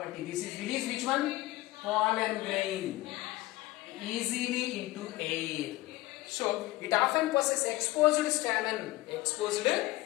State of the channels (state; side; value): quieter; right; 18.7 dB